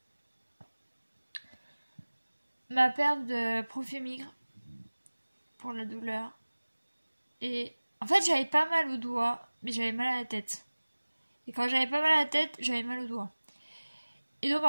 Ma perf de Profémigre pour la douleur. Et en fait, j'avais pas mal au doigt, mais j'avais mal à la tête. Et quand j'avais pas mal à la tête, j'avais mal au doigt. Et donc,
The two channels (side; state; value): both; inverted; correlation -1.00